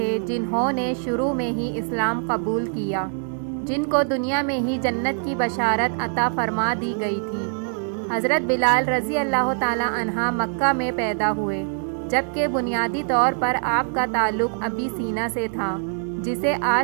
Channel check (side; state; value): left; silent; 56 dB below the other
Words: جنہوں نے شروع میں ہی اسلام قبول کیا، جن کو دنیا میں ہی جنت کی بشارت عطا فرما دی گئی تھی۔ حضرت بلال رضی اللہ تعالی عنہ مکہ میں پیدا ہوئے، جبکہ بنیادی طور پر آپ کا تعلق ابیسینا سے تھا، جسے